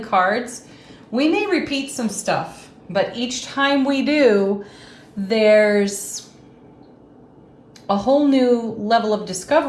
cards. We may repeat some stuff, but each time we do, there's a whole new level of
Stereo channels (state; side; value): identical; both; correlation 1.00